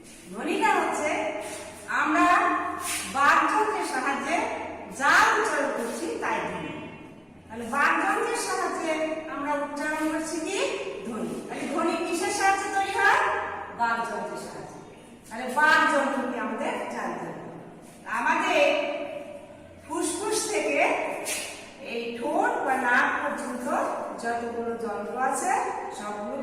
ধ্বনিটা হচ্ছে আমরা বাকযন্ত্রের সাহায্যে যা উচ্চারণ করছি তাই ধ্বনি। তাহলে বাকযন্ত্রের সাহায্যে আমরা উচ্চারণ করছি কি? ধ্বনি। তাহলে ধ্বনি কিসের সাহায্যে তৈরি হয়? বাকযন্ত্রের সাহায্যে। তাহলে বাকযন্ত্রটি আমাদের জানতে হবে। আমাদের ফুসফুস থেকে এই ঠোঁট বা নাক পর্যন্ত যতগুলো যন্ত্র আছে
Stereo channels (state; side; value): identical; both; correlation 1.00